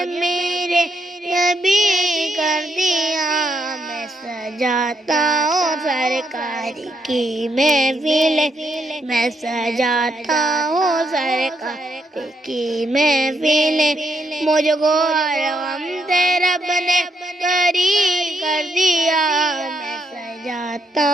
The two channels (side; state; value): both; normal; correlation 0.76